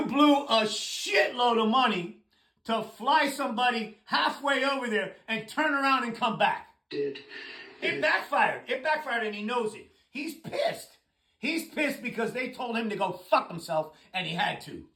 blew a shitload of money to fly somebody halfway over there and turn around and come back. It backfired. It backfired and he knows it. He's pissed. He's pissed because they told him to go fuck himself and he had to.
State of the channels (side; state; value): both; identical; correlation 1.00